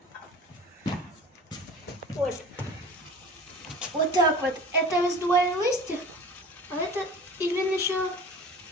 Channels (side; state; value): both; normal; correlation 0.39